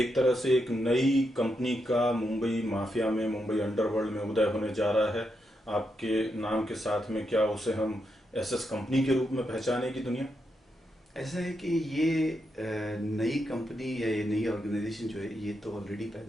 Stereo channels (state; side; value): normal; both; correlation 0.83